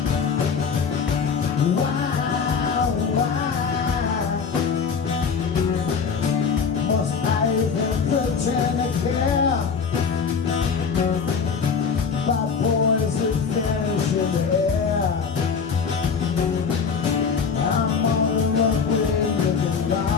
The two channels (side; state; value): right; quieter; 5.9 dB